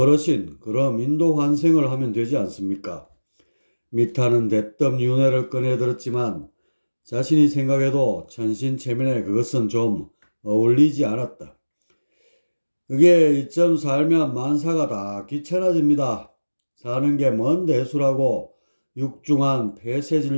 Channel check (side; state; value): both; inverted; correlation -1.00